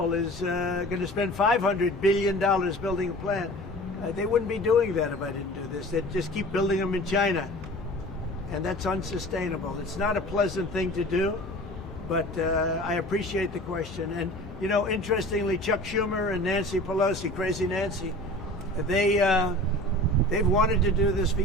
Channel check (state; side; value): normal; both; correlation 0.40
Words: is going to spend $500 billion building a plant. They wouldn't be doing that if I didn't do this. They'd just keep building them in China. And that's unsustainable. It's not a pleasant thing to do, but I appreciate the question. And, you know, interestingly, Chuck Schumer and Nancy Pelosi, Crazy Nancy, they've wanted to do this for